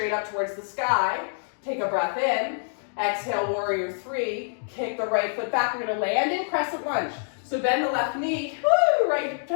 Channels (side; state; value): right; silent; digital silence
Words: up towards the sky. Take a breath in. Exhale, warrior three. Kick the right foot back. We're gonna land in crescent lunge. So bend the left knee, woo, right